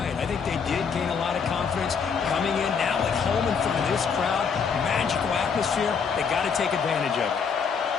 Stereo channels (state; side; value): quieter; right; 6.1 dB